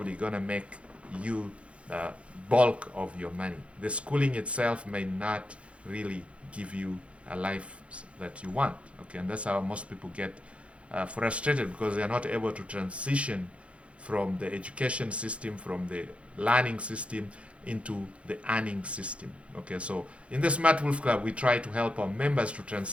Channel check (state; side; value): late; left; 0.061 ms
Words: going to make you bulk of your money. The schooling itself may not really give you a life that you want. Okay, and that's how most people get frustrated because they are not able to transition from the education system, from the learning system into the earning system. Okay, so in the Smart Wolf Club, we try to help our members to